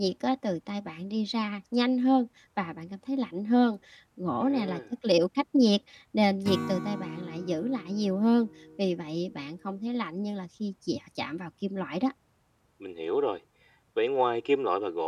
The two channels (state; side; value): identical; both; correlation 1.00